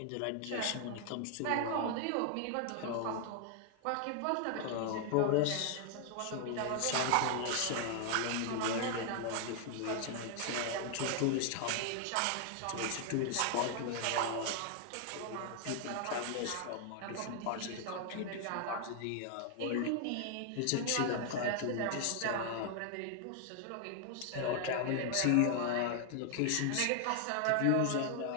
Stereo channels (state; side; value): different; both; correlation 0.00